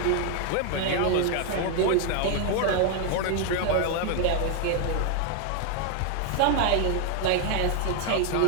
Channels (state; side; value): different; both; correlation 0.00